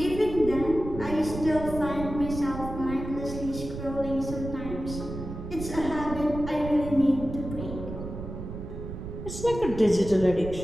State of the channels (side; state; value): right; noise; rumble, 9 dB below the sound